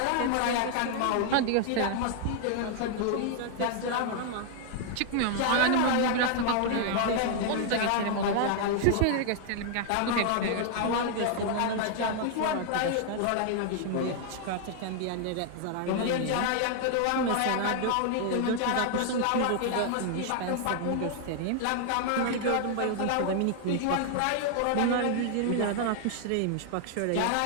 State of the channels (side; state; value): both; different; correlation 0.00